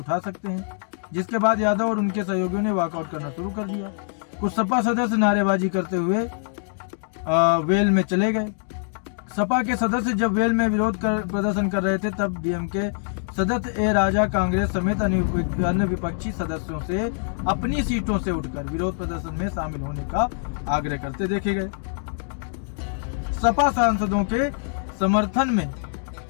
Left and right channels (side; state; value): right; silent; digital silence